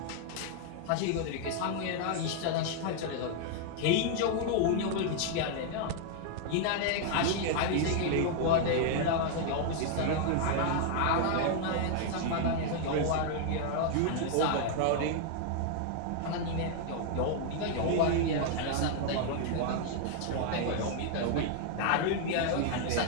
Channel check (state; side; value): different; both; correlation 0.00